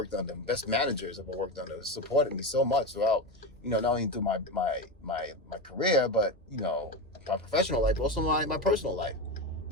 under, best managers I've ever worked under. It supported me so much throughout, not only through my career, but, my professional life, but also my personal life.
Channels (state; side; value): normal; both; correlation 0.17